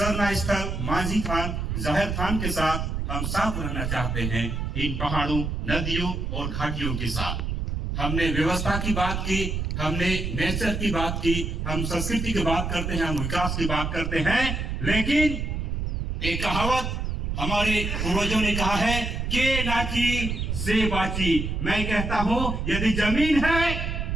स्थल, मांझी थान, जाहिर थान के साथ। हम साथ रहना चाहते हैं इन पहाड़ों, नदियों और घाटियों के साथ। हमने व्यवस्था की बात की, हमने नेचर की बात की, हम संस्कृति की बात करते हैं, हम विकास की बात करते हैं, लेकिन एक कहावत हमारे पूर्वजों ने कहा है के नाची से बाची। मैं कहता हूँ यदि जमीन है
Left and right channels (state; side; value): noise; right; rumble, 2 dB below the sound